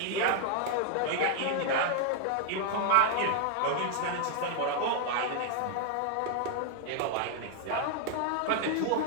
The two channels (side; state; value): both; different; correlation 0.00